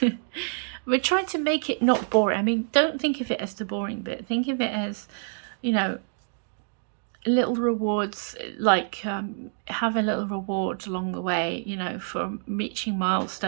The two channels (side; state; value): left; silent; digital silence